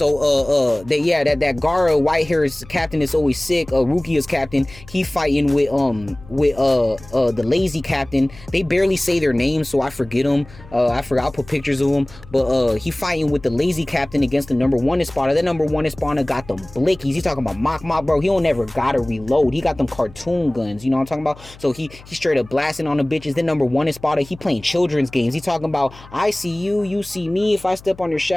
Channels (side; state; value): left; noise; hum, 21 dB below the sound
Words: that Gara white hairs captain is always sick. Rukia's captain, he fighting with the lazy captain. They barely say their names, so I forget them. I forgot, I'll put pictures of them. But he fighting with the lazy captain against the number 1 Espada. That number 1 Espada got them blickies. He talking about mock, bro. He don't never gotta reload. He got them cartoon guns. You know what I'm talking about? So he straight up blasting on the bitches. Then number 1 Espada, he playing children's games. He talking about, I see you, you see me. If I step on your